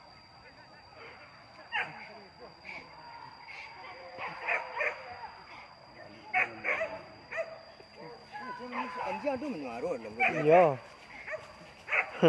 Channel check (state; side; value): identical; both; correlation 1.00